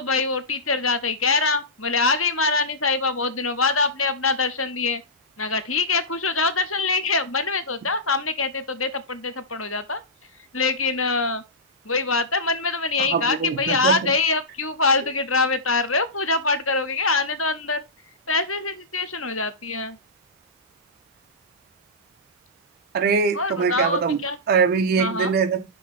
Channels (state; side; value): normal; both; correlation -0.14